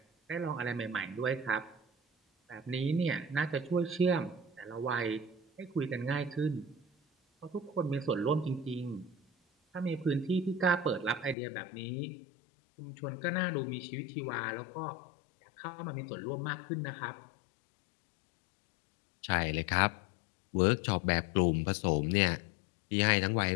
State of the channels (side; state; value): right; drops out; at 11.4 s